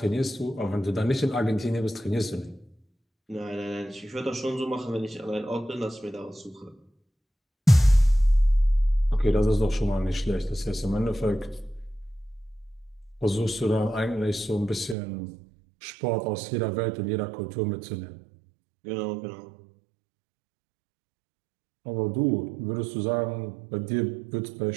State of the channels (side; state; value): left; drops out; at 15.0 s